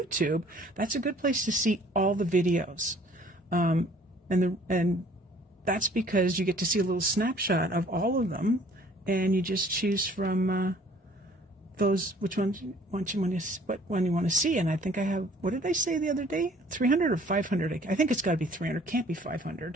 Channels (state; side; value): normal; both; correlation 0.56